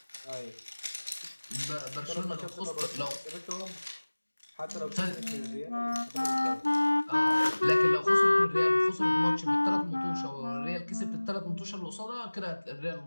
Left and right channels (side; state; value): both; inverted; correlation -1.00